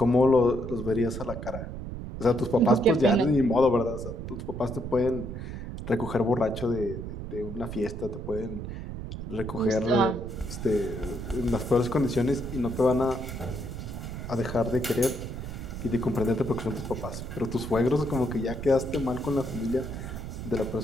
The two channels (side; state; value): right; noise; rumble, 8 dB below the sound